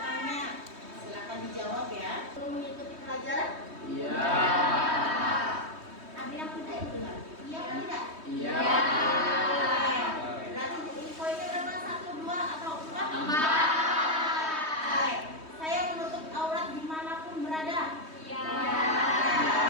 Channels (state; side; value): late; left; 3.2 ms